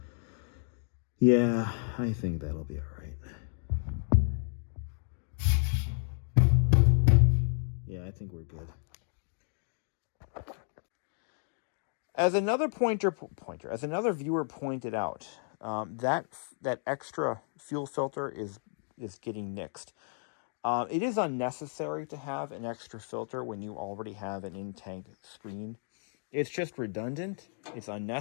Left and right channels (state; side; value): silent; right; 56 dB below the other